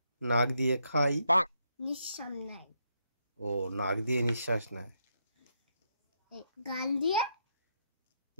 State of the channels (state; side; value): inverted; both; correlation -0.78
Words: দিয়ে খাই, নিঃশ্বাস নেয়। ও নাক দিয়ে নিঃশ্বাস নেয়। গাল